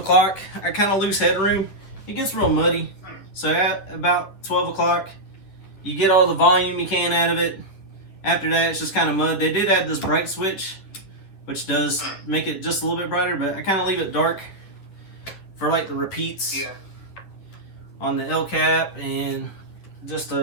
I kind of lose headroom. It gets real muddy. So at about 12 o'clock, you get all the volume you can out of it. After that, it's just kind of mud. They did add this bright switch, which does make it just a little bit brighter, but I kind of leave it dark for like the repeats on the L cap, and just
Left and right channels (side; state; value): right; late; 10 ms